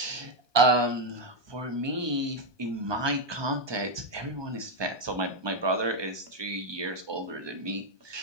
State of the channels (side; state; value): left; late; 1.2 ms